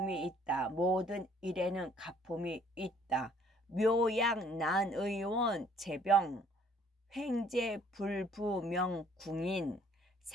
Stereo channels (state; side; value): normal; both; correlation 0.60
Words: 있다. 모든 일에는 가품이 있다. 묘약 난의원 재병 횡재 불부명 궁인